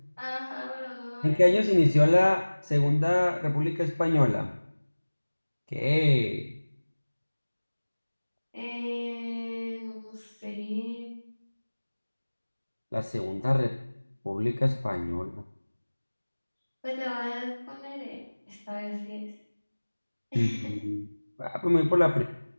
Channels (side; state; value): both; inverted; correlation -1.00